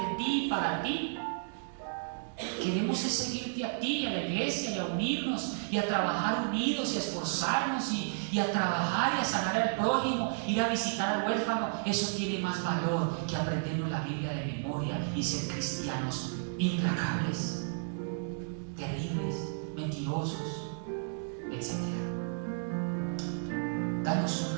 de ti y para ti. Queremos seguirte a ti, a la iglesia, y a unirnos y a trabajar unidos y a esforzarnos y a trabajar y a sanar al prójimo, ir a visitar al huérfano. Eso tiene más valor que aprendernos la Biblia de memoria y ser cristianos implacables, terribles, mentirosos, etc. Danos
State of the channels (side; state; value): left; silent; digital silence